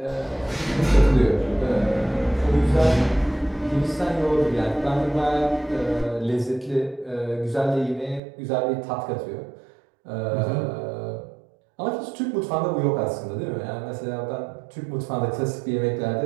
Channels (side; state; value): left; drops out; at 8.2 s